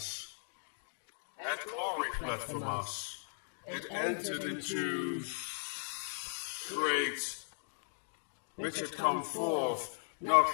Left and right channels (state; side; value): silent; right; digital silence